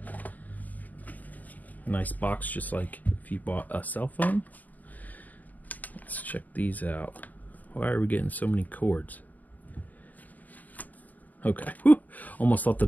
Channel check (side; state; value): right; late; 0.079 ms